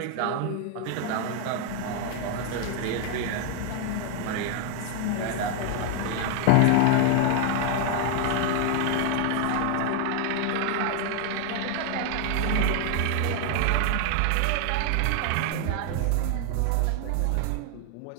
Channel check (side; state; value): both; different; correlation 0.00